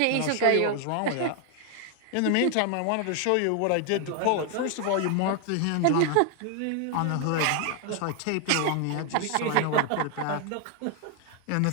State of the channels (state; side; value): different; both; correlation 0.00